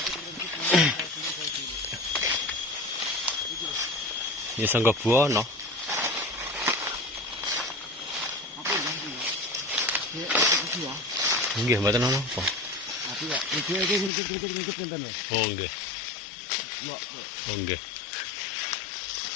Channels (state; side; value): drops out; right; at 14.1 s